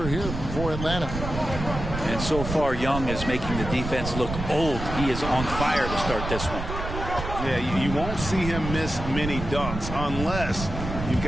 here for Atlanta. And so far, Young is making the defense look old. He is on fire to start this one. Yeah, you won't see him miss many dunks unless you've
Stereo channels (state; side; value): noise; right; rumble, 6 dB below the sound